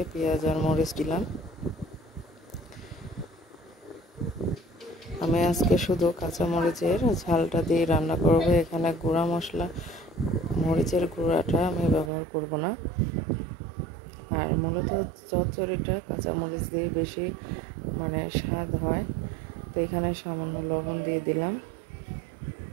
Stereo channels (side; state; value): left; drops out; at 12.1 s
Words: পেঁয়াজ আর মরিচ দিলাম। আমি আজকে শুধু কাঁচা মরিচের ঝালটা দিয়ে রান্না করব। এখানে গুঁড়া মশলা, মরিচের গুঁড়াটা আমি ব্যবহার করব না। আর মূলত চচ্চড়িটা কাঁচা মরিচ দিয়ে বেশি স্বাদ হয়। তো এখানে সামান্য লবণ দিয়ে দিলাম